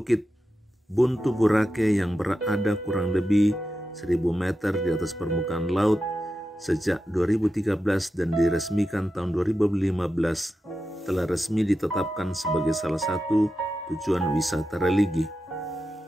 Buntu Boracay yang berada kurang lebih 1000 meter di atas permukaan laut sejak 2013 dan diresmikan tahun 2015, telah resmi ditetapkan sebagai salah satu tujuan wisata religi.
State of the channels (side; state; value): both; normal; correlation 0.90